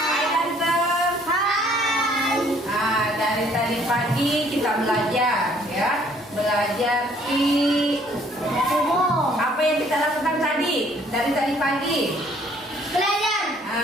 ganteng. Dari tadi pagi kita belajar, ya. Belajar apa yang kita lakukan tadi? Dari tadi pagi.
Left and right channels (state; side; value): normal; both; correlation 0.61